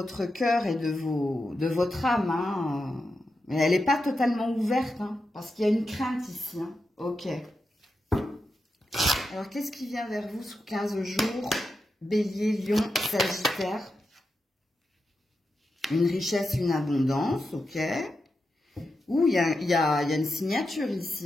cœur et de votre âme. Mais elle n'est pas totalement ouverte, parce qu'il y a une crainte ici. Ok. Alors, qu'est-ce qui vient vers vous sous 15 jours? Bélier, Lion, Sagittaire. Une richesse, une abondance, ok. Ouh, il y a une signature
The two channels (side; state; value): both; normal; correlation 0.88